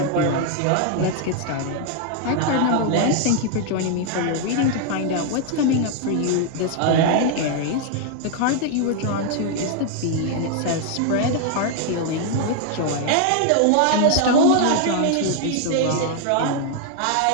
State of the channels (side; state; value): both; different; correlation 0.00